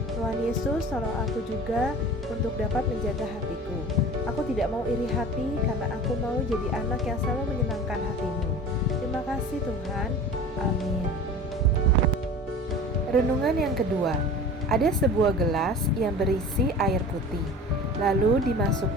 Tuhan Yesus, tolong aku juga untuk dapat menjaga hatiku. Aku tidak mau iri hati karena aku mau jadi anak yang selalu menyenangkan hatimu. Terima kasih Tuhan. Amin. Renungan yang kedua. Ada sebuah gelas yang berisi air putih. Lalu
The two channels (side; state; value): both; normal; correlation 0.38